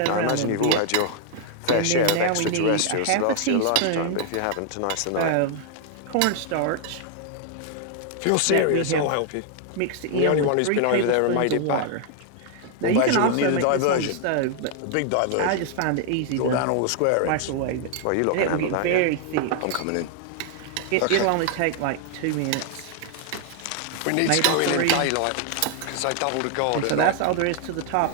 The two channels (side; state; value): both; different; correlation 0.00